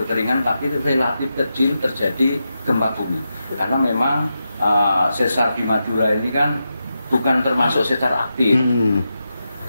tapi relatif kecil terjadi gempa bumi. Karena memang sesar di Madura ini kan bukan termasuk sesar aktif.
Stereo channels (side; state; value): both; inverted; correlation -0.88